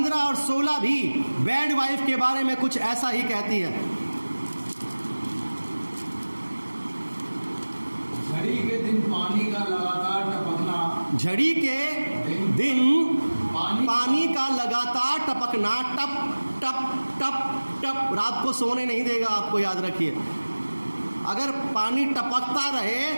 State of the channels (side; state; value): both; inverted; correlation -1.00